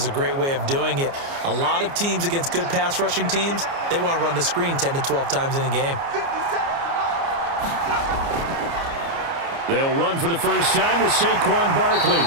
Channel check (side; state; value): left; late; 29 ms